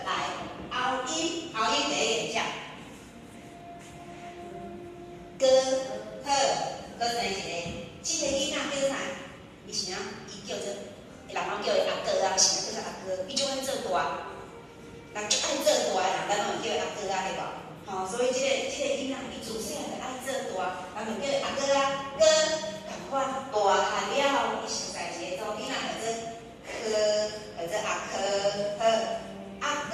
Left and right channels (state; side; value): identical; both; correlation 1.00